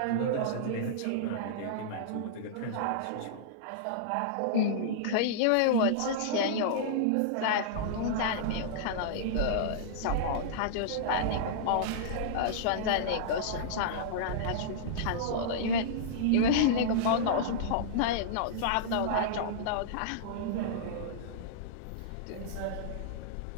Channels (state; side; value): different; both; correlation -0.02